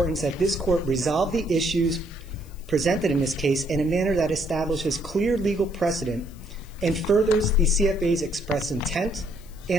that this Court resolve the issues presented in this case in a manner that establishes clear legal precedent and furthers the CFA's express intent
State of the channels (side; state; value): left; noise; hiss, 26 dB below the sound